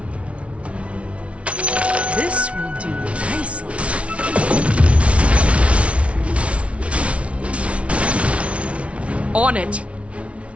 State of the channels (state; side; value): late; left; 0.062 ms